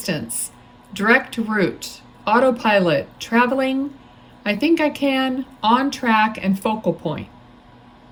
direct route, autopilot, traveling, I think I can, on track, and focal point.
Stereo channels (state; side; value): identical; both; correlation 1.00